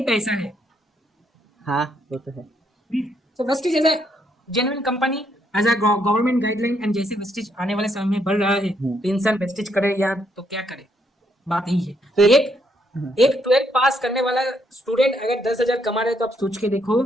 पैसा है। हाँ वो तो है। So Vestige is a genuine company as a government guideline, and जैसे वेस्टिज आने वाले समय में बढ़ रहा है, तो इंसान वेस्टिज करे या तो क्या करे, बात यही है। फिर एक एक 12th पास करने वाला स्टूडेंट अगर 10,000 कमा रहे, तो आप सोच के देखो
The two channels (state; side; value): normal; both; correlation 0.74